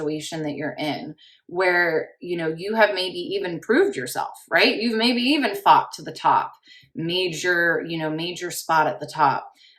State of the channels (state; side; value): identical; both; correlation 1.00